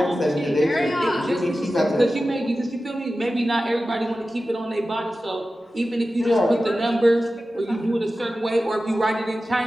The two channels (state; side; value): normal; both; correlation 0.94